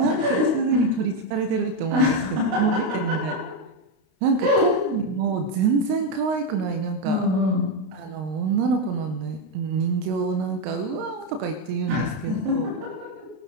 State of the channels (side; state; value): left; late; 32 ms